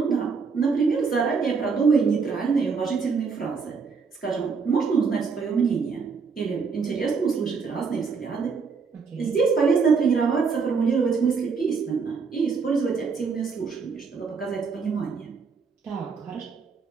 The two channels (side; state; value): left; quieter; 5.2 dB